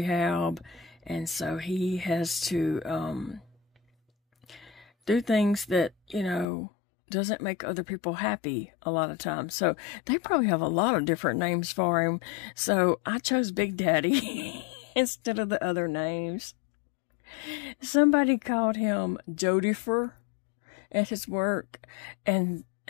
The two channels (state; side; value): drops out; right; at 6.5 s